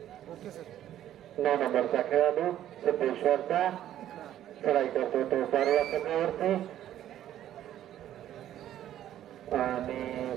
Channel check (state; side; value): quieter; left; 11.8 dB